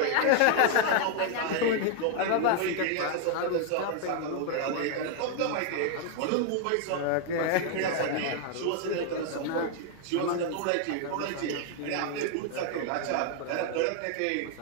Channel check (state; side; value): different; both; correlation 0.00